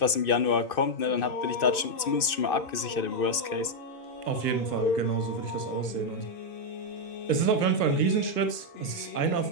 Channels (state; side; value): late; right; 2.6 ms